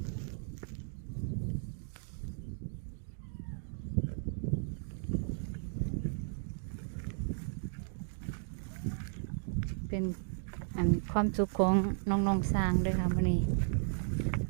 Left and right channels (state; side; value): silent; left; digital silence